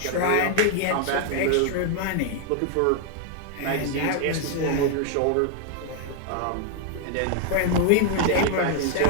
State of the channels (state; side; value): different; both; correlation 0.00